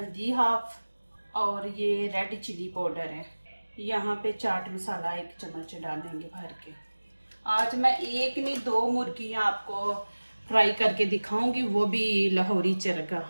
हाफ और ये रेड चिली पाउडर है। यहाँ पे चाट मसाला 1 चम्मच डालेंगे भर के। आज मैं एक नहीं 2 मुर्गियाँ आपको फ्राई करके दिखाऊंगी, वो भी लाहौरी चरगा।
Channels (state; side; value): inverted; both; correlation -1.00